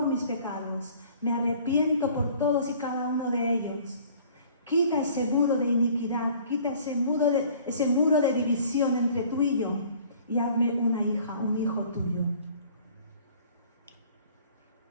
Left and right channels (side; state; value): both; inverted; correlation -0.52